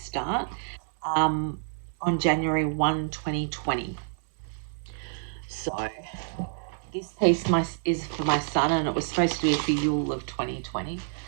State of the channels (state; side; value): silent; left; digital silence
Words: on January 1, 2020. So this piece is for my son, and it was supposed to be for Yule of 2020.